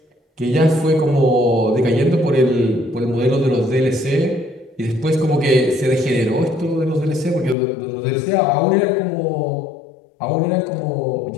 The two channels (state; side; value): drops out; right; at 7.6 s